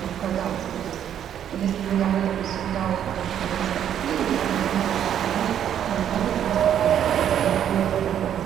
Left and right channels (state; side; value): quieter; left; 9.8 dB